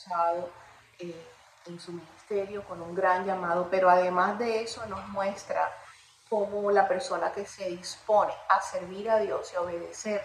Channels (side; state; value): both; identical; correlation 1.00